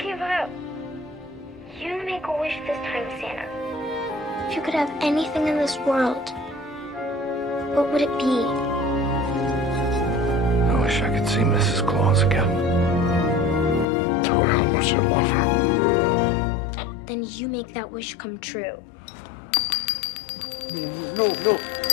up. You make a wish this time, Santa. If you could have anything in this world, what would it be? I wish I could see Mrs. Claus again. Tell her how much I love her. Then you make that wish come true. No.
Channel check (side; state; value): right; drops out; at 13.9 s